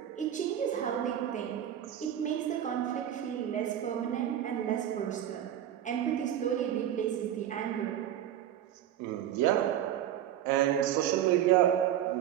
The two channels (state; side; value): quieter; left; 11.0 dB